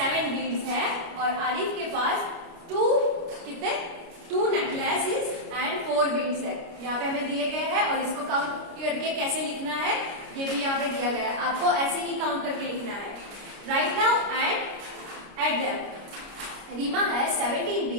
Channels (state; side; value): late; left; 29 ms